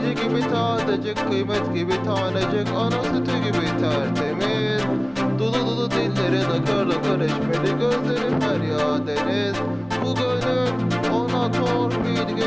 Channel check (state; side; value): noise; right; hum, 25 dB below the sound